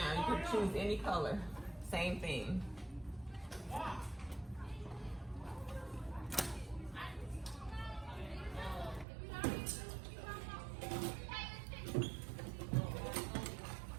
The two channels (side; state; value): left; drops out; at 9.1 s